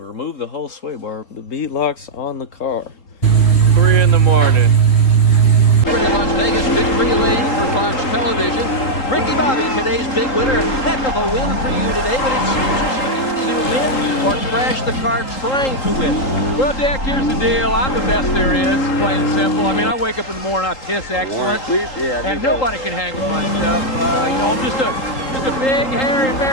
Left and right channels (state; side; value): late; right; 3.8 ms